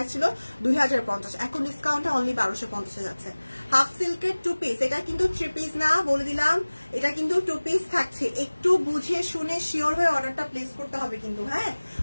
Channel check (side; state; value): both; inverted; correlation -1.00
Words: ছিল 2050, এখন ডিসকাউন্টে অনলি 1250 যাচ্ছে। হাফ সিল্কের 2 পিস, এটা কিন্তু 3 পিস না বলে দিলাম, এটা কিন্তু 2 পিস থাকছে। একটু বুঝে শুনে শিওর হয়ে অর্ডারটা প্লেস করতে হবে কিন্তু, হ্যাঁ